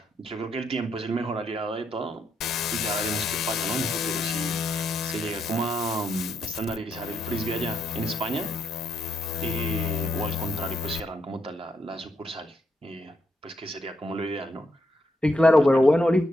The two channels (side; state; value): both; normal; correlation 0.78